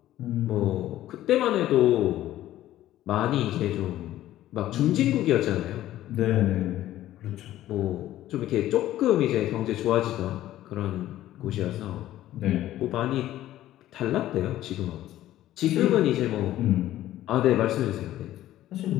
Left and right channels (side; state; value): right; quieter; 13.8 dB